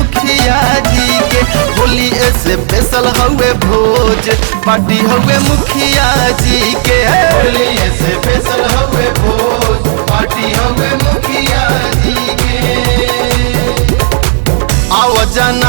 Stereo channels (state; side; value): silent; left; digital silence